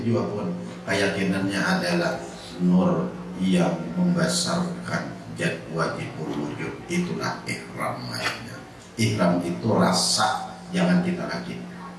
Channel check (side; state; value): both; identical; correlation 1.00